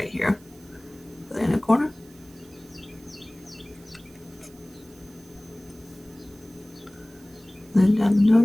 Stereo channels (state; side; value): noise; right; hiss, 26 dB below the sound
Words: here. Put it in the corner. Then down the